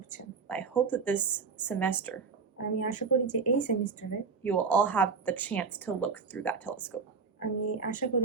I hope that this semester আমি আশা করি যে এই সেমিস্টারে you will all have the chance to look through that telescope. আমি আশা করি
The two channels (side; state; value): left; quieter; 5.2 dB